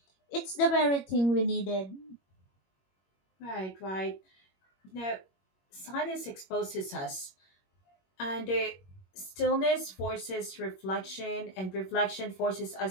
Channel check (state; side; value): late; right; 21 ms